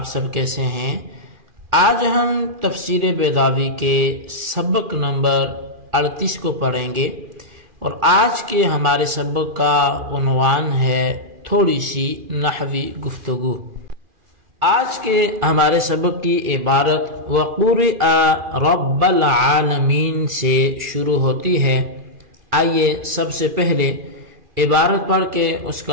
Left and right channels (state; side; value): late; left; 2.4 ms